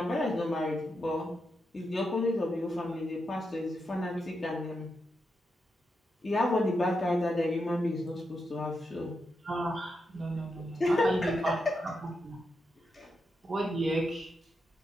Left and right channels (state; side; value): normal; both; correlation 0.85